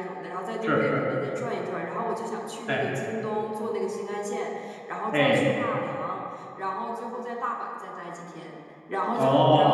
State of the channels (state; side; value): identical; both; correlation 1.00